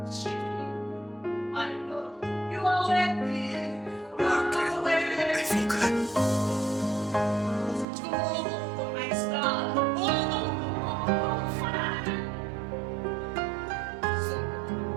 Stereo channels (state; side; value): drops out; left; at 7.9 s